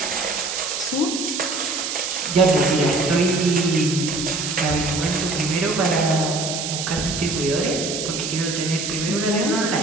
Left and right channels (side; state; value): right; noise; hiss, 4 dB below the sound